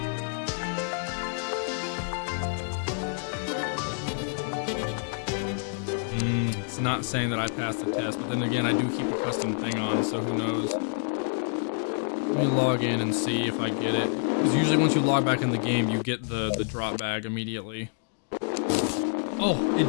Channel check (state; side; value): silent; right; digital silence